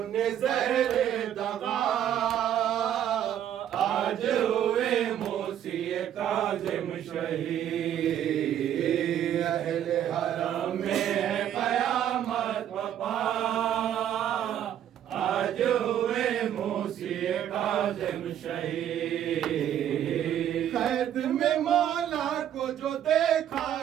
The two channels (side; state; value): left; quieter; 10.5 dB